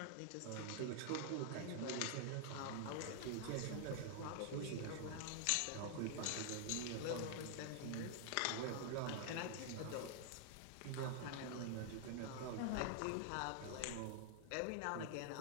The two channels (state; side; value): different; both; correlation 0.00